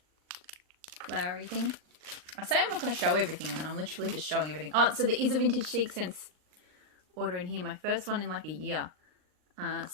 flowery thing. I say I'm not going to show everything, and then I'm literally just showing everything. Oh, so there is a vintage chic scents order in here. My first one in like a year.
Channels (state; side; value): late; left; 39 ms